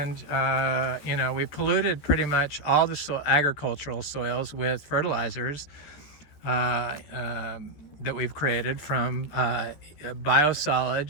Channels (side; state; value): right; late; 14 ms